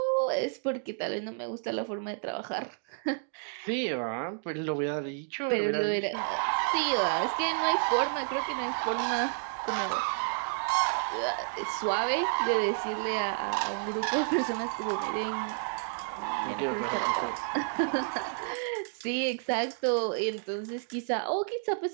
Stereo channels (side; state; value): left; silent; digital silence